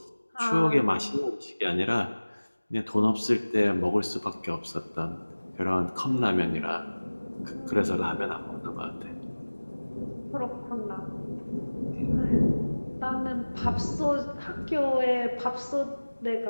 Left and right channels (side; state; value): both; inverted; correlation -1.00